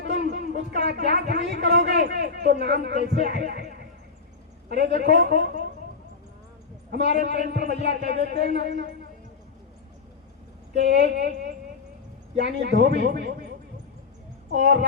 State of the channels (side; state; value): right; quieter; 4.8 dB